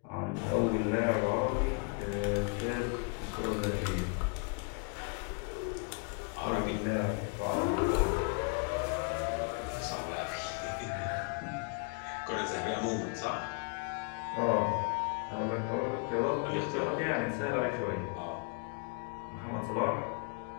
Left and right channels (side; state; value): right; quieter; 34.3 dB